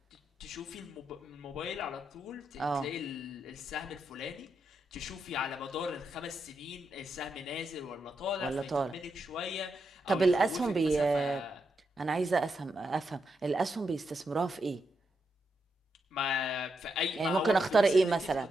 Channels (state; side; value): normal; both; correlation 0.83